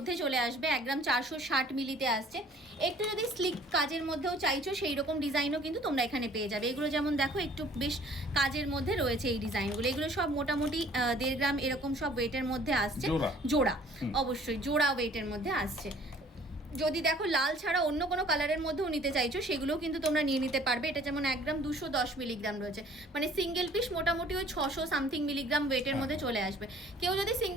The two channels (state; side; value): normal; both; correlation 0.54